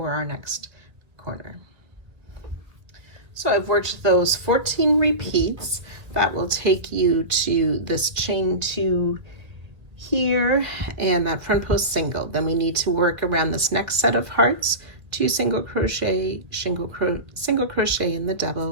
our next corner. So I've worked those 14 repeats. That will take you to this chain 2 here and that front post single. Then we need to work around this next set of hearts, 2 single crochet, single crochet in the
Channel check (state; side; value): late; left; 1.7 ms